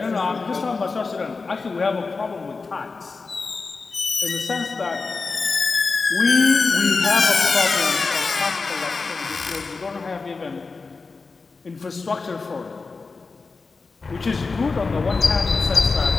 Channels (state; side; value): quieter; right; 4.2 dB